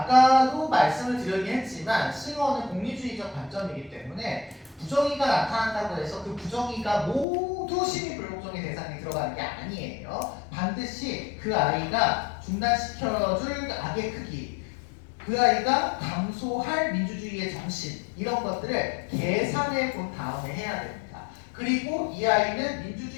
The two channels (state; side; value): drops out; right; at 7.2 s